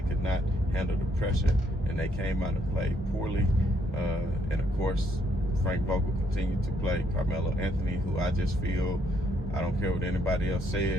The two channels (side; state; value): both; normal; correlation 0.71